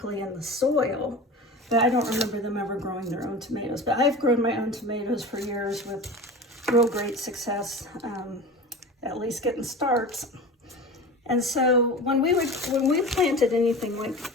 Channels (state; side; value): normal; both; correlation 0.33